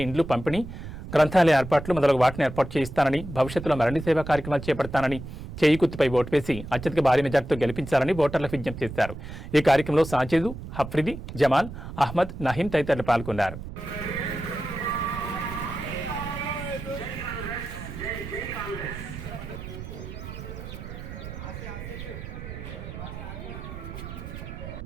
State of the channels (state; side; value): noise; right; rumble, 10 dB below the sound